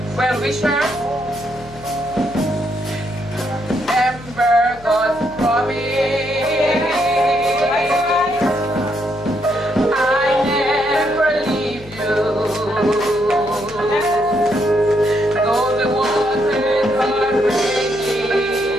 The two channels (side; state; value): left; noise; hum, 20 dB below the sound